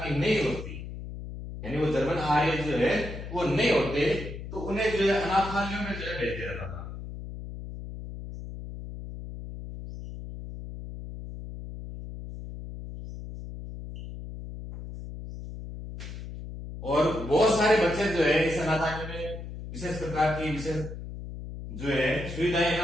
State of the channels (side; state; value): left; noise; hum, 10 dB below the sound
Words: की नहीं होती, यानी वो जर्मन आर्य जो है वो नहीं होते, तो उन्हें जो है अनाथालयों में जो है भेज दिया जाता था। और बहुत सारे बच्चे जो है इस अनाथालय में विशेष प्रकार की विशेष जो है सुविधाएं न